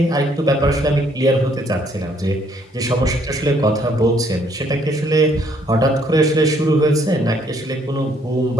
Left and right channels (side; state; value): both; normal; correlation 0.66